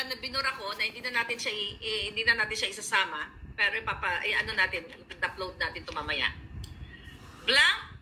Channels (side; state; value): both; identical; correlation 1.00